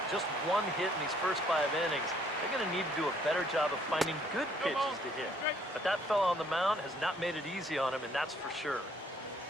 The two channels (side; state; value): both; normal; correlation 0.64